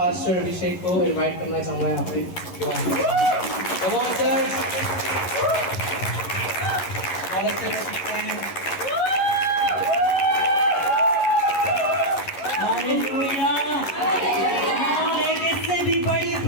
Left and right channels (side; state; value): right; late; 11 ms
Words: अभिषेक को इनवाइट करना चाहूँगा यहाँ पे। कमान सर बहुत अच्छे से सीखते हैं। हालेलुया। एक इससे भी बड़ी